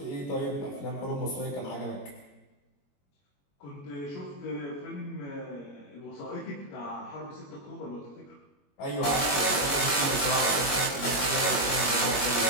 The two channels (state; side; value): late; right; 21 ms